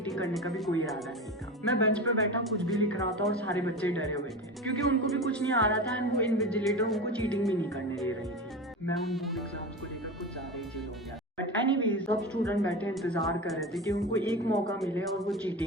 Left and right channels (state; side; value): normal; both; correlation 0.26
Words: करने का भी कोई इरादा नहीं था। मैं बेंच पे बैठा कुछ भी लिख रहा था और सारे बच्चे डरे हुए थे क्योंकि उनको भी कुछ नहीं आ रहा था एंड वो इन्विजिलेटर उनको चीटिंग भी नहीं करने दे रही थी। मैं उन बोर्ड एग्जाम्स को लेकर कुछ ज्यादा ही चिल हो गया। बट एनीवेज सब स्टूडेंट बैठे इंतजार कर रहे थे कि उनको एक मौका मिले और वो